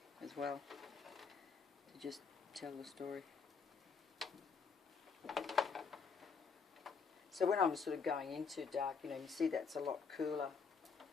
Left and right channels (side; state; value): right; quieter; 5.4 dB